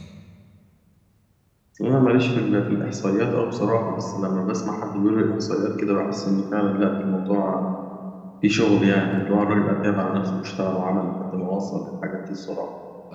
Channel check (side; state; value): both; identical; correlation 1.00